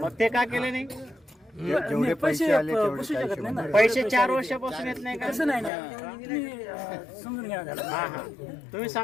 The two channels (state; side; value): drops out; right; at 5.7 s